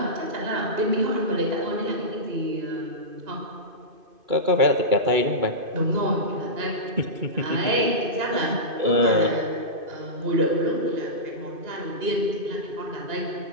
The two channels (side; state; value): left; late; 2.5 ms